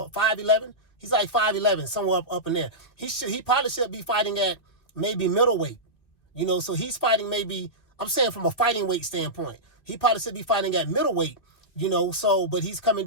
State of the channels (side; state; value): right; late; 2.4 ms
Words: 5'11"? He's like 5'11", somewhere up in there. He probably should be fighting at maybe middleweight, so he's fighting maybe, I'm saying from a fighting weight standpoint, he probably should be fighting at middleweight, but he's coming